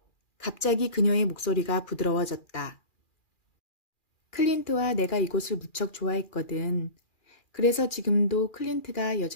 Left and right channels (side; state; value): right; late; 2.4 ms